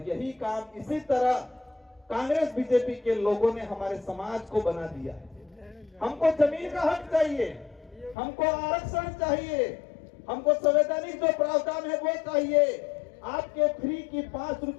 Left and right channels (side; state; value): right; drops out; at 8.2 s